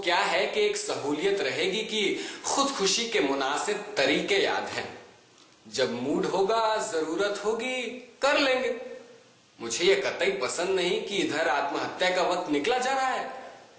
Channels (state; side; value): identical; both; correlation 1.00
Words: है कि एक सहूलियत रहेगी कि खुदकुशी के मुनासिब तरीके याद हैं। जब मूड होगा, जरूरत होगी, कर लेंगे। मुझे ये कतई पसंद नहीं कि इधर आत्महत्या का वक्त निकला जा रहा है